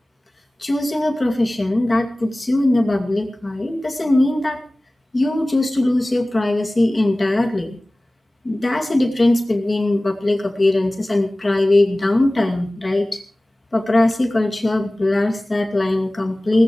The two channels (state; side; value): normal; both; correlation 0.98